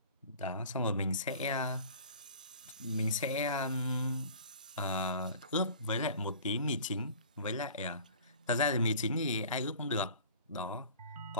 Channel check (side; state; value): both; inverted; correlation -0.45